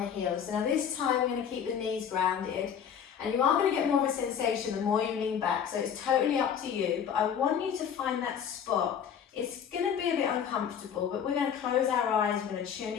heels. So now this time we're going to keep the knees grounded. And you are going to get more of a sensation the more you lean back. So it's totally up to you. But I want you to find that spot. It's going to be a bit uncomfortable, but we're going to close our eyes. We're going to tune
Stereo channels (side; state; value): right; quieter; 8.0 dB